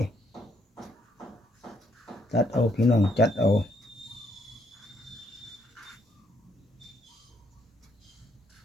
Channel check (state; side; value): normal; both; correlation 0.72